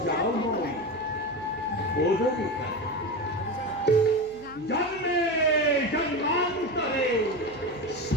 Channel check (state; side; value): noise; right; hum, 22 dB below the sound